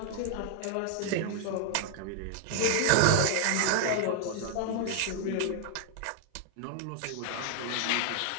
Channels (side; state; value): both; different; correlation 0.00